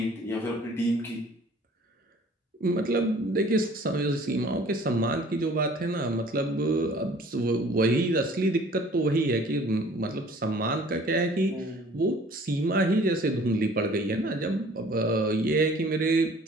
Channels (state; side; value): normal; both; correlation 0.52